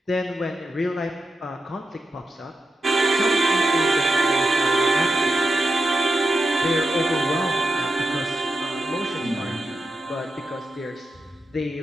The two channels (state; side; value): normal; both; correlation 0.88